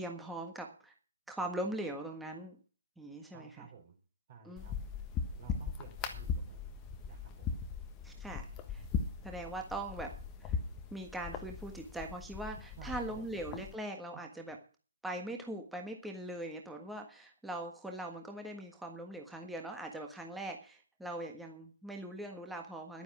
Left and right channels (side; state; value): both; normal; correlation 0.27